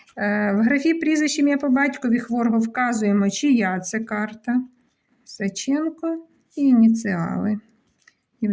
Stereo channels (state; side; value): identical; both; correlation 1.00